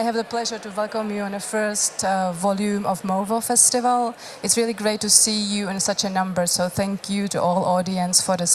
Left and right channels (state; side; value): identical; both; correlation 1.00